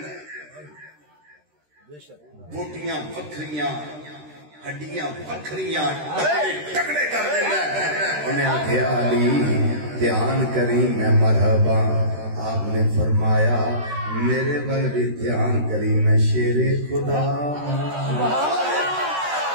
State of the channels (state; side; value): late; left; 13 ms